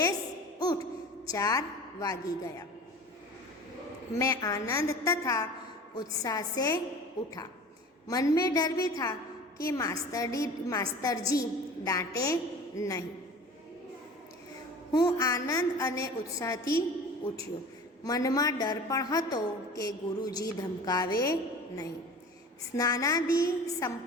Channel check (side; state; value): both; normal; correlation 0.39